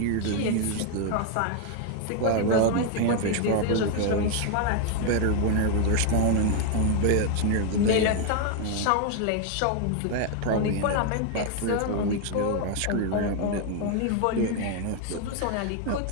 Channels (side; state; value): both; different; correlation 0.01